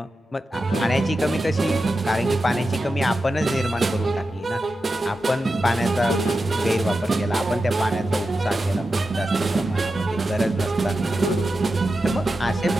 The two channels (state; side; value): normal; both; correlation 0.91